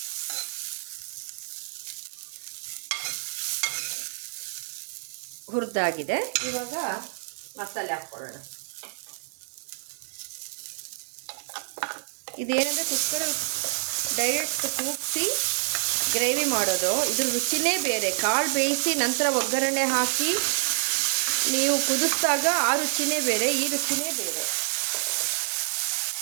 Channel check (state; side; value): silent; left; digital silence